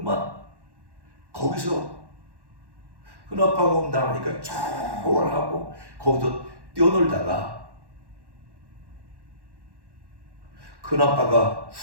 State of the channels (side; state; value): left; late; 1.1 ms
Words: 거기서 큰아빠가 온다 하니까 쫙 하고 거기서 뛰어놀다가 큰아빠가